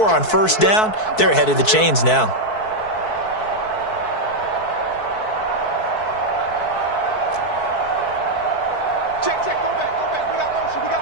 on 1st down. They're ahead of the chains now. Check. Go back. We got motion.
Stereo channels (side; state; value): right; late; 4.6 ms